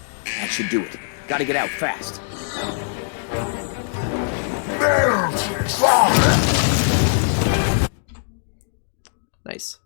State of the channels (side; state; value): right; silent; digital silence